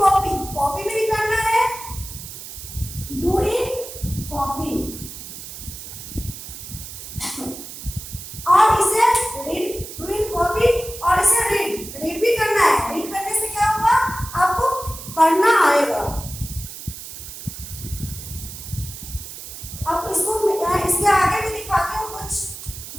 कॉपी में भी करना है, डू इन कॉपी। और इसे रीड, डू इन कॉपी, और इसे रीड, रीड भी करना है। रीड करने से क्या होगा, आपको पढ़ना आएगा। अब इसको इसके आगे भी दिखाती हूँ कुछ,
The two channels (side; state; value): right; noise; hiss, 12 dB below the sound